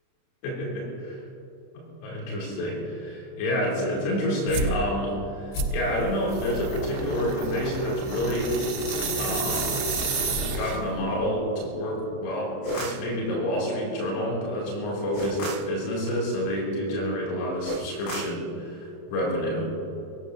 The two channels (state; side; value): late; right; 30 ms